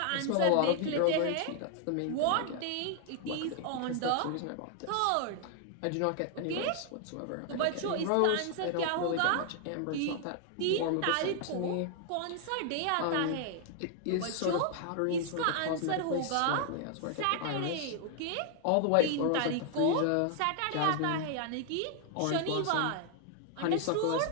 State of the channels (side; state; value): both; different; correlation 0.00